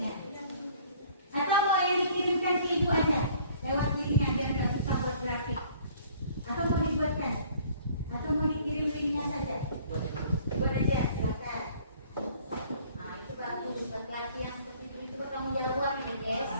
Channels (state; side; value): inverted; both; correlation -0.55